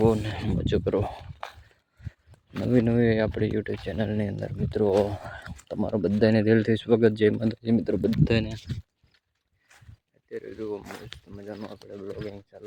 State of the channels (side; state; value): both; identical; correlation 1.00